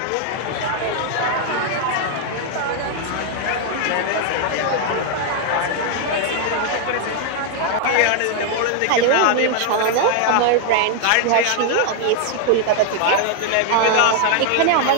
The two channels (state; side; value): different; both; correlation 0.00